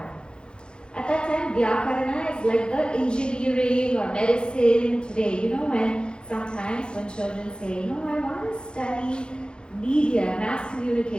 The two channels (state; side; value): late; right; 0.051 ms